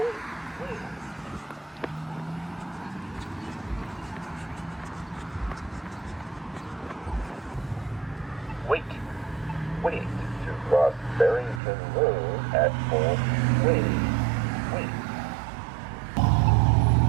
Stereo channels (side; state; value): left; drops out; at 11.6 s